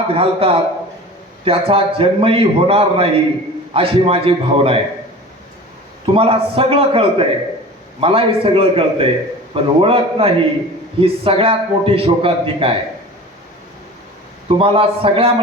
घालतात त्याचा जन्मही होणार नाही, अशी माझी भावना आहे. तुम्हाला सगळं कळतंय, मलाही सगळं कळतंय, पण ओळख नाही ही सगळ्यात मोठी शोकांतिका आहे. तुम्हाला सगळ्या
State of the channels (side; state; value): both; normal; correlation 0.38